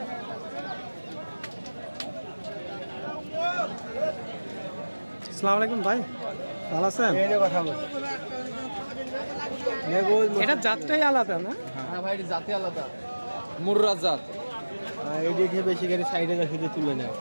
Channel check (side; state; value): both; inverted; correlation -1.00